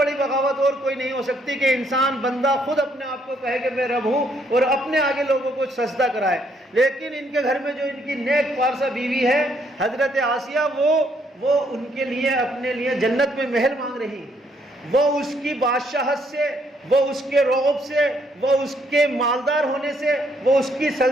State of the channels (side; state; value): both; normal; correlation 0.70